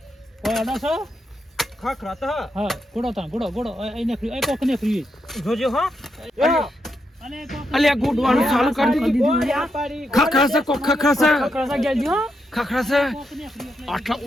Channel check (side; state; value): both; normal; correlation 0.82